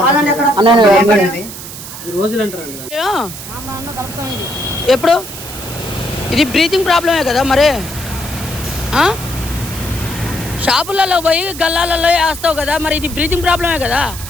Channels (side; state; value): right; noise; hiss, 11 dB below the sound